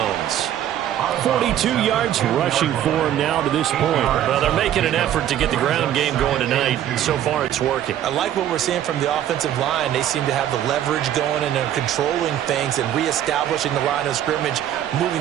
42 yards rushing for him now to this point. Well, they're making an effort to get the ground game going tonight. So far, it's working. I like what we're seeing from the offensive line. They seem to have the leverage going, and they're controlling things and reestablishing the line of scrimmage,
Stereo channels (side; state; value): left; quieter; 11.3 dB